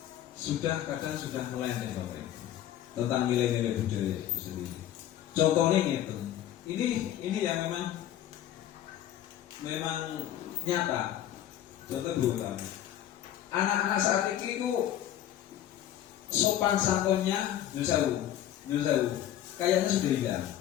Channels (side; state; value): right; quieter; 11.7 dB